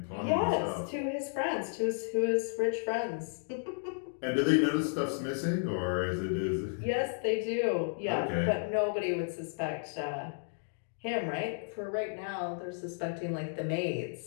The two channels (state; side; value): silent; right; digital silence